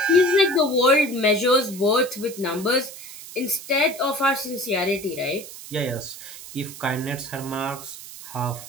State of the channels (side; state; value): right; noise; hiss, 14 dB below the sound